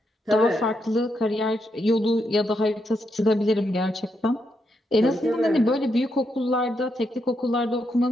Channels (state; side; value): normal; both; correlation 0.81